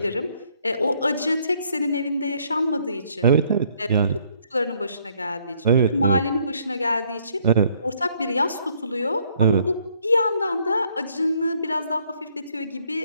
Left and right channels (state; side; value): inverted; both; correlation -0.66